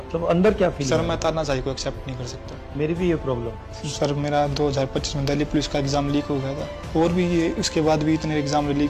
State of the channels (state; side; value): identical; both; correlation 1.00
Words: अंदर क्या फील? सर मैं तानाशाही को एक्सेप्ट नहीं कर सकता। मेरी भी ये प्रॉब्लम। सर मेरा 2025 में दिल्ली पुलिस का एग्जाम लीक हो गया था और भी ये उसके बाद भी इतने एग्जाम